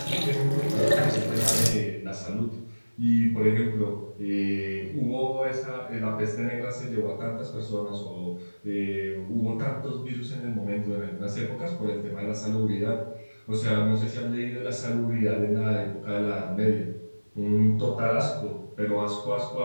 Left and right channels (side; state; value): both; inverted; correlation -1.00